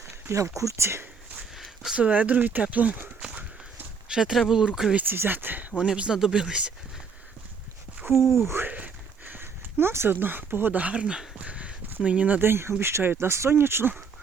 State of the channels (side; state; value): left; quieter; 5.7 dB